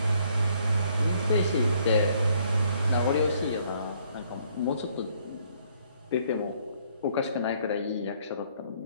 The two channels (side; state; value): both; inverted; correlation -0.65